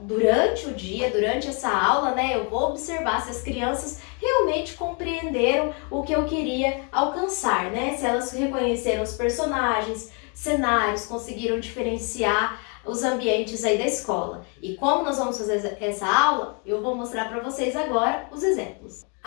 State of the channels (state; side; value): quieter; right; 36.1 dB